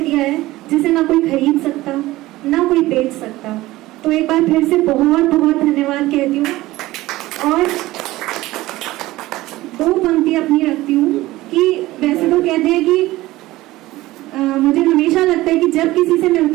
है जिसे ना कोई खरीद सकता, ना कोई बेच सकता। तो एक बार फिर से बहुत बहुत धन्यवाद कहती हूँ। और दो पंक्ति अपनी रखती हूँ कि वैसे तो कहते हैं कि मुझे हमेशा लगता है कि जब किसी से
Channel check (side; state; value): left; quieter; 17.7 dB